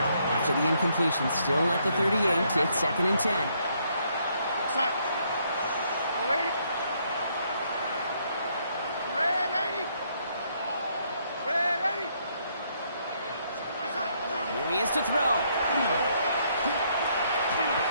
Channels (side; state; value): both; inverted; correlation -0.71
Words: After the incompletion, still at the 38, it's 2nd and 10. Here he is to throw.